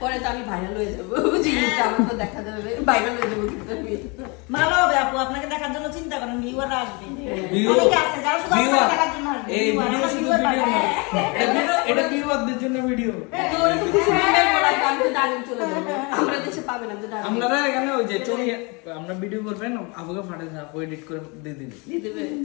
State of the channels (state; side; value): quieter; right; 29.5 dB